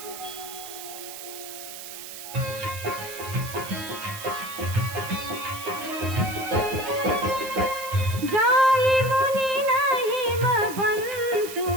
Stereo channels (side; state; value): right; noise; hiss, 11 dB below the sound